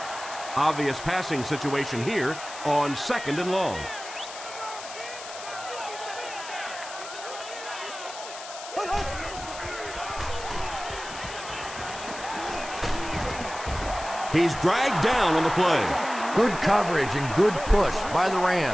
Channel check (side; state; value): left; noise; hiss, 12 dB below the sound